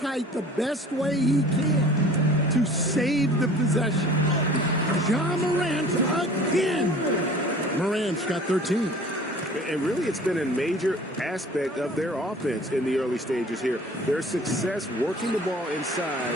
the best way he can to save the possession. Ja Morant again. Morant's got 13. And really, it's been a major aspect of their offense in the early stages here. Their success working the ball inside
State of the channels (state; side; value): normal; both; correlation 0.47